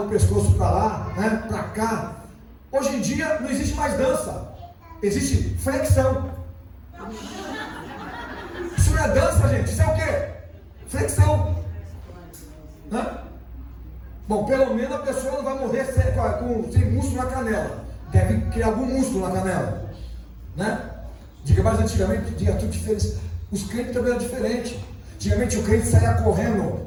o pescoço para lá, né? Para cá. Hoje em dia não existe mais dança, existe flexão. Isso não é dança, gente, isso é o quê? Flexão, né? Bom, pelo menos a pessoa não vai morrer sem músculo na canela. Deve criar algum músculo na canela, né? Diga, mas antigamente, diga tudo diferente. Os crentes também eram diferentes. Antigamente o crente saía correndo,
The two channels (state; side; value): identical; both; correlation 1.00